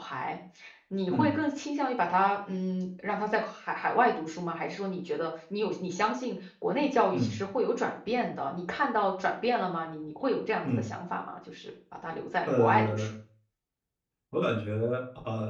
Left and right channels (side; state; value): both; identical; correlation 1.00